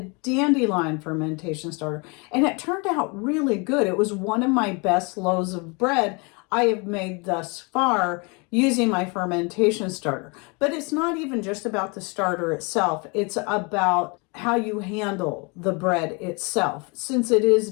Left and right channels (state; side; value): quieter; right; 30.5 dB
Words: fermentation starter, and it turned out really good. It was one of my best loaves of bread I have made thus far using my fermentation starter. But it's not even just about the starter itself. It's about how you handle the bread itself, since it is